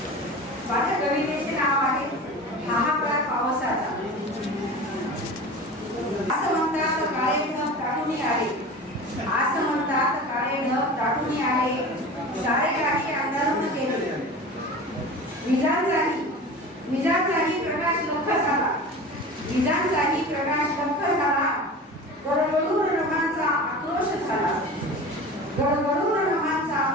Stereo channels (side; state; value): both; normal; correlation 0.34